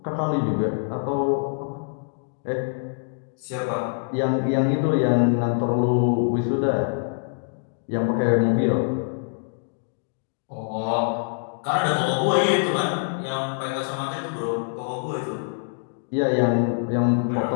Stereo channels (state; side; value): silent; right; digital silence